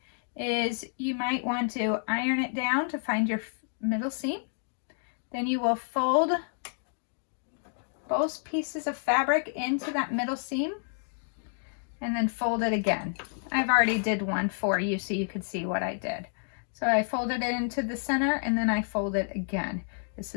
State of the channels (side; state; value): right; silent; 58 dB below the other